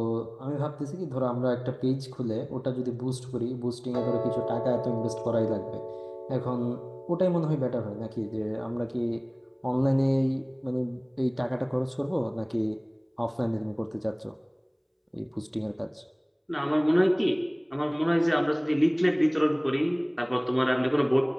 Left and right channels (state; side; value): identical; both; correlation 1.00